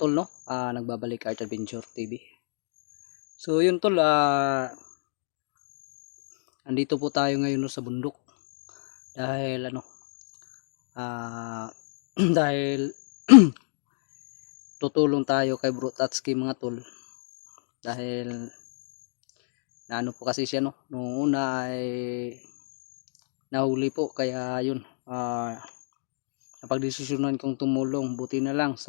tol, no? Nagbabalik Art Adventure TV. So, yun tol, andito po tayo ngayon no, sa bundok. Dahil, dahil tutulong tayo kay Bro Tatsuki, mga tol. Dahil, naano po kasi siya, no? Noong una ay nahuli po, kaya yun, napagdesisyonan kong tumulong. Buti na lang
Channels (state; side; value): silent; right; digital silence